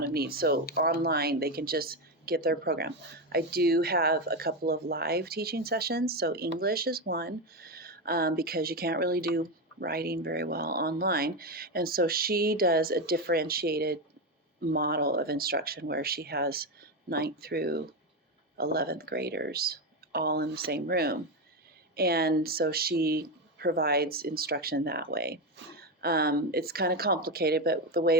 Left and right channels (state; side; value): normal; both; correlation 0.12